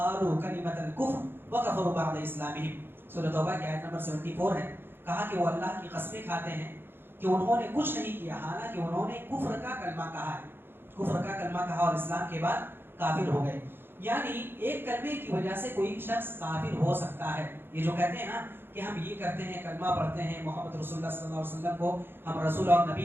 کلمۃ الکفر وکفروا بعد اسلامہم. سورۃ توبہ کی آیت نمبر 74 ہے. کہا کہ وہ اللہ کی قسمیں کھاتے ہیں کہ انہوں نے کچھ نہیں کیا، حالانکہ انہوں نے کفر کا کلمہ کہا ہے، کفر کا کلمہ کہا اور اسلام کے بعد کافر ہو گئے. یعنی ایک کلمے کی وجہ سے کوئی شخص کافر ہو سکتا ہے. یہ جو کہتے ہیں نا کہ ہم یہ کرتے ہیں، کلمہ پڑھتے ہیں، محمد رسول اللہ صلی اللہ علیہ وسلم کو ہم رسول اور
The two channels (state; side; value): late; left; 0.10 ms